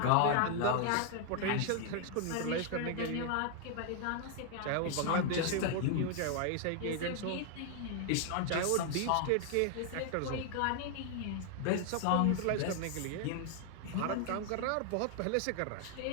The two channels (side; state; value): both; different; correlation 0.00